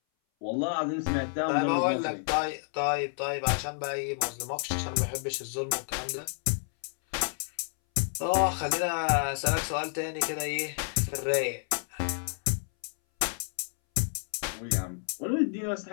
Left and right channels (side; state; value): right; silent; 58 dB below the other